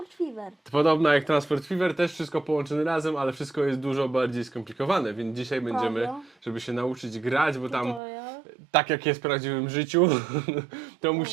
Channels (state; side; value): drops out; left; at 8.0 s